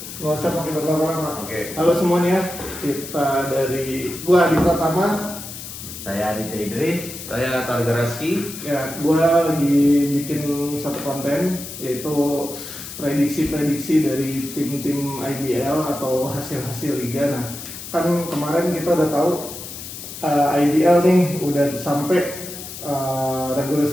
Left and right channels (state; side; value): noise; left; hiss, 11 dB below the sound